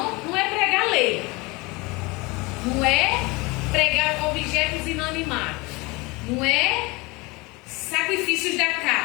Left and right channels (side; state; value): right; quieter; 24.9 dB